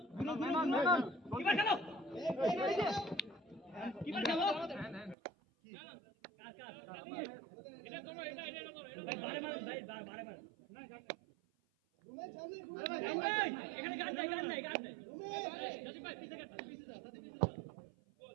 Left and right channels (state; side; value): drops out; left; at 5.2 s